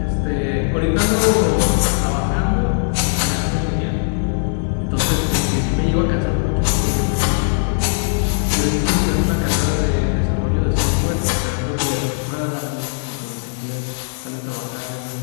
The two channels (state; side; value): silent; right; 61 dB below the other